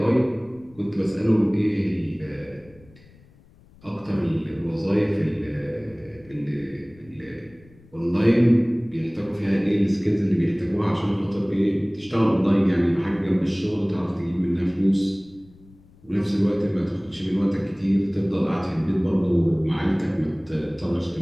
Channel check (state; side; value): noise; left; rumble, 26 dB below the sound